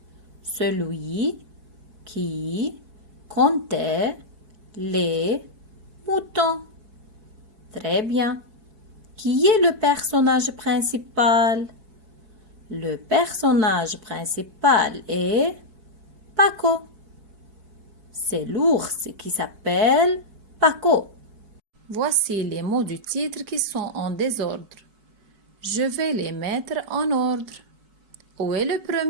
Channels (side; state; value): left; late; 4.6 ms